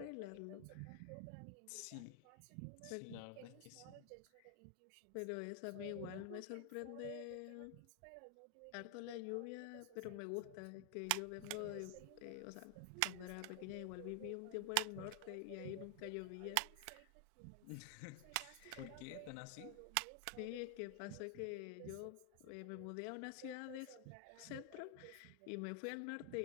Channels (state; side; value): different; both; correlation 0.00